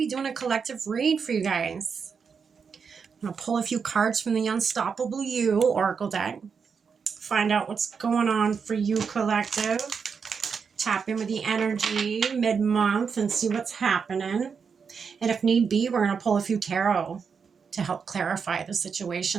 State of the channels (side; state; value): left; quieter; 6.0 dB